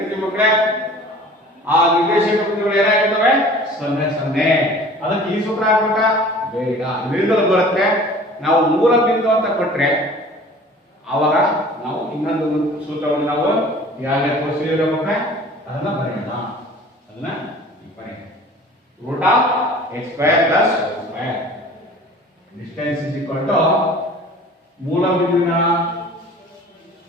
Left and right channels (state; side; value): normal; both; correlation 0.45